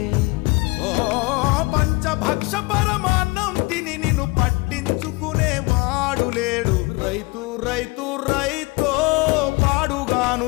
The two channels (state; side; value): quieter; right; 24.6 dB